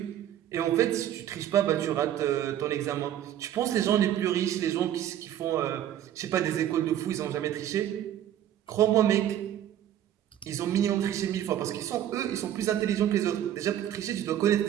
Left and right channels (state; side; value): quieter; left; 11.2 dB